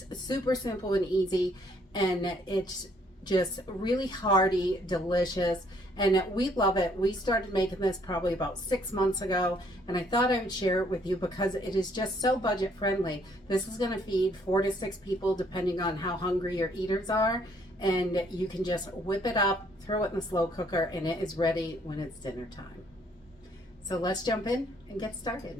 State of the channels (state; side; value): normal; both; correlation 0.66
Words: super simple and easy, and it's just really hearty, delicious, and we love it. We started making this probably about 6 months ago, and I thought I would share it with you because it is just so budget friendly. This is going to feed 4 to 6 people depending on how hungry your eaters are, and you can just whip it up, throw it in the slow cooker, and it is ready when it's dinner time. So let's jump in and get